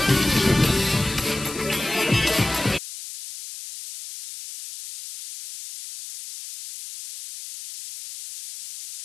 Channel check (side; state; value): left; noise; hiss, 12 dB below the sound